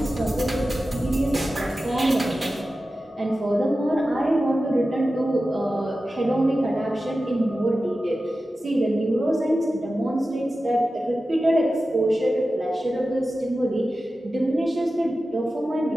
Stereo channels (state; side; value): normal; both; correlation 0.94